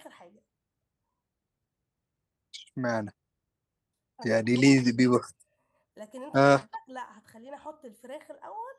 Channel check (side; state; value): both; identical; correlation 1.00